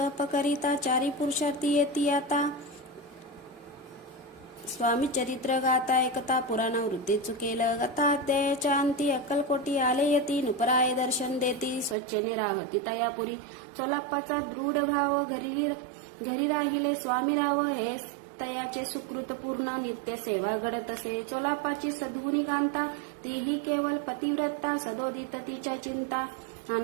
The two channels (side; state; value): left; drops out; at 12.0 s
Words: करिता चारी पुरुषार्थी येती आता। स्वामी चरित्र गाता ऐकता पुराण वृत्ती चुकेल गता अध्यायाच्या अंती अक्कलकोटी आले यती नुपराय दर्शन देती स्वच्छने राहती तयापुरी चोलाप्पाचा दृढ भाव घरी राहिले स्वामी राव हे तयाचे सुकृत पूर्ण नित्य सेवा घडत असे चोलाप्पाची सद्गुणी कांता तेही केवळ पतिव्रता सदोदित तिच्या चिंता